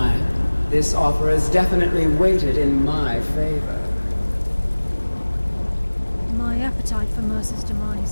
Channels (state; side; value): inverted; both; correlation -1.00